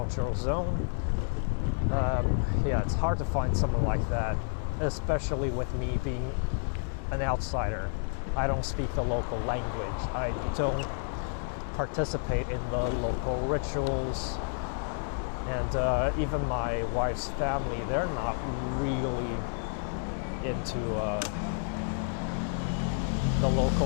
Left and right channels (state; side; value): silent; right; 58 dB below the other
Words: zone. Yeah, it's hard to find someone like that, especially with me being an outsider. I don't speak the local language. I don't participate in the local rituals. And even my wife's family, they're not really into the